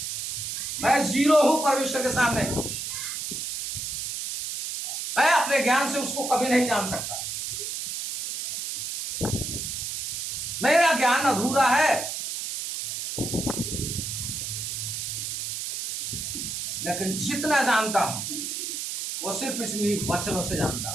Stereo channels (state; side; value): noise; right; hiss, 4 dB below the sound